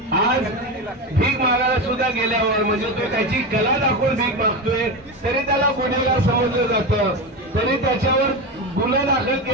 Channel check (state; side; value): normal; both; correlation 0.19